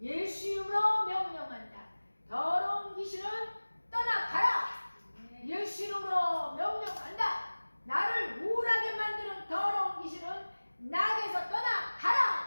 예수 이름으로 명령한다. 더러운 귀신은 떠나가라. 예수 이름으로 명령한다. 나를 우울하게 만드는 더러운 귀신은 나에게서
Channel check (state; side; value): inverted; both; correlation -1.00